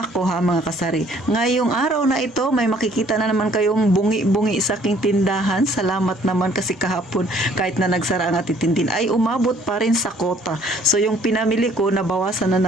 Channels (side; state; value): both; normal; correlation 0.60